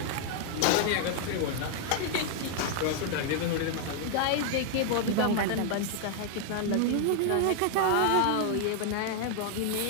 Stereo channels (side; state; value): both; different; correlation 0.00